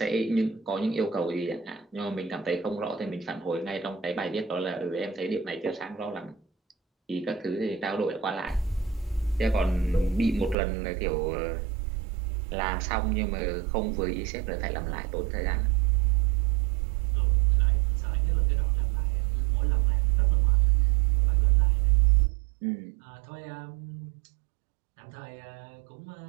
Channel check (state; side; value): drops out; left; at 10.6 s